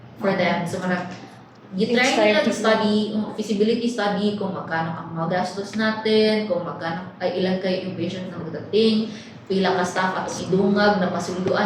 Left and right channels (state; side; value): identical; both; correlation 1.00